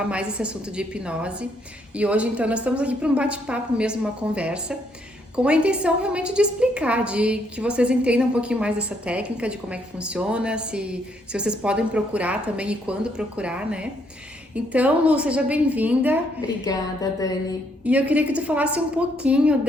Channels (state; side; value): normal; both; correlation 0.72